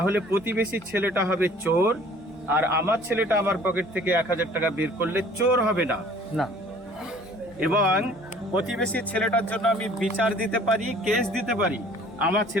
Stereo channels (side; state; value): both; normal; correlation 0.52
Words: প্রতিবেশীর ছেলেটা হবে চোর, আর আমার ছেলেটা আমার পকেট থেকে 1000 টাকা বের করলে চোর হবে না। এবং প্রতিবেশীর ছেলেটার জন্য আমি বিচার দিতে পারি, কেস দিতে পারি, আমার